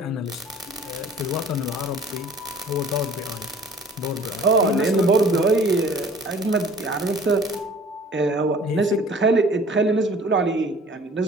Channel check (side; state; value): both; normal; correlation 0.50